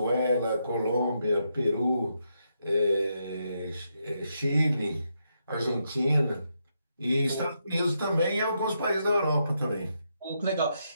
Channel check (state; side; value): inverted; both; correlation -0.81